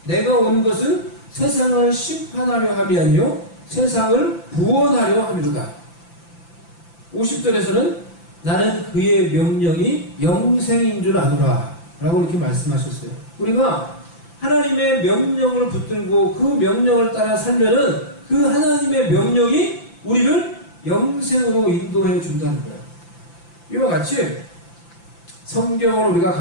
내가 온 것은 세상을 심판하려 함이 아니요 세상을 구원하려 함이로다. 50절에서는 나는 그의 명령이 영생인 줄 아노라 라고 이렇게 말씀하셨어요. 우리가 하나님의 명령을 붙들고 그 명령을 따라 살면은 그 하나님의 명령이 우리를 영생으로 인도해 준다는 거예요. 이와 같이 성경을 우리가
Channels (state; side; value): late; right; 5.9 ms